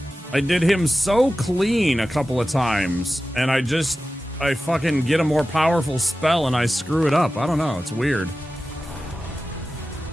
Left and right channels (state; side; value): normal; both; correlation 0.94